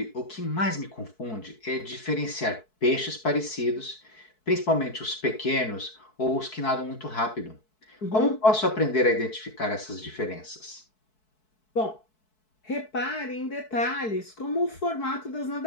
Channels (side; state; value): right; late; 4.6 ms